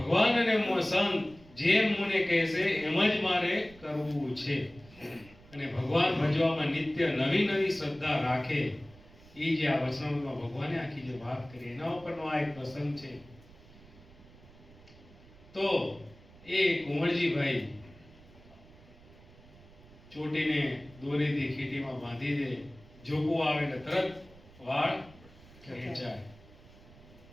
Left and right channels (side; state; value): right; noise; rumble, 23 dB below the sound